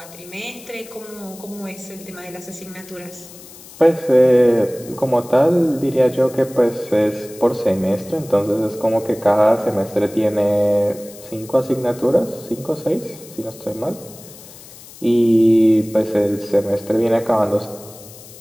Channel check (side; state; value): left; noise; hiss, 19 dB below the sound